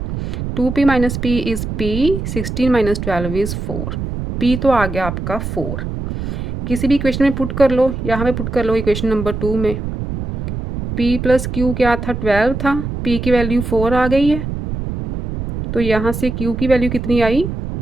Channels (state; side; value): noise; right; rumble, 5 dB below the sound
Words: 2p - p is p, 16 - 12 is 4, p तो आ गया आपका 4। किसी भी इक्वेशन में पुट कर लो, यहाँ पे पुट कर लो इक्वेशन नंबर 2 में, p + q क्या था, 12 था, p की वैल्यू 4 आ गई है, तो यहाँ से q की वैल्यू कितनी आई,